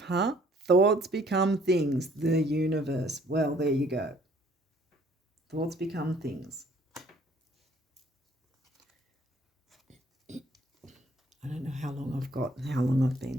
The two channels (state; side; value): normal; both; correlation 0.59